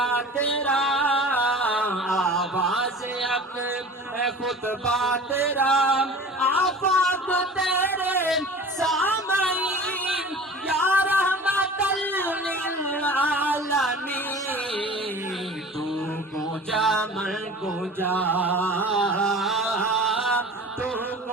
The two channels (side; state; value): both; normal; correlation 0.40